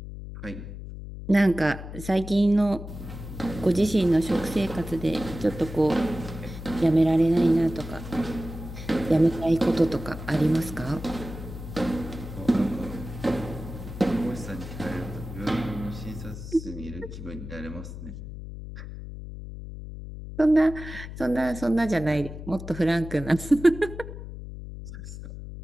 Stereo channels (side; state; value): left; noise; hum, 11 dB below the sound